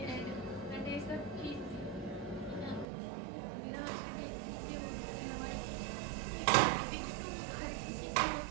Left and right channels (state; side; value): drops out; left; at 2.9 s